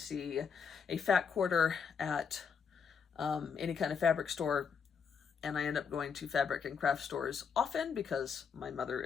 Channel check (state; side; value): quieter; right; 6.4 dB